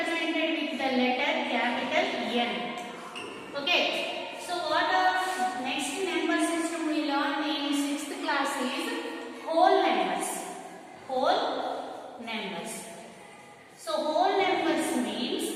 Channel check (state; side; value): identical; both; correlation 1.00